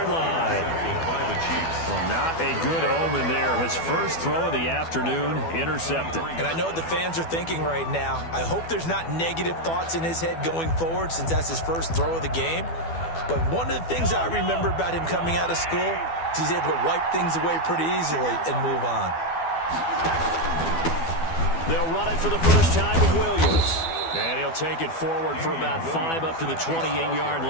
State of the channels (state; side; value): late; right; 12 ms